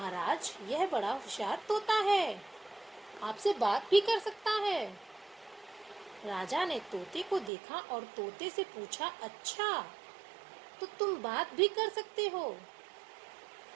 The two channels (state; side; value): drops out; left; at 7.5 s